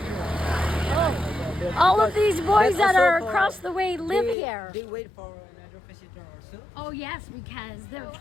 All of these boys that are across the way live here. They wait for another visitor also. Oh yes, because they're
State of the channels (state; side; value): drops out; right; at 4.4 s